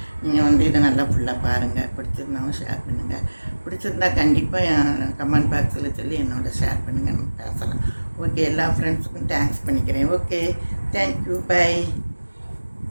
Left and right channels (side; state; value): both; inverted; correlation -1.00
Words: நீங்கள் வந்து இதை நல்லா ஃபுல்லாக பாருங்கள். பிடிச்சிருந்தாலும் ஷேர் பண்ணுங்கள். பிடிச்சிருந்தா கண்டிப்பாக என் கமெண்ட் பாக்ஸில் சொல்லி என்னோட ஷேர் பண்ணுங்கள், நம்ம பேசலாம். ஓகே, எல்லா ஃப்ரெண்ட்ஸுக்கும் தேங்க்ஸ் பண்ணிக்கிறேன். Okay, thank you, by.